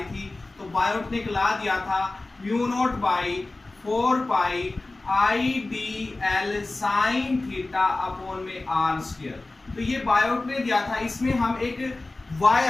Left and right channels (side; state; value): right; quieter; 3.1 dB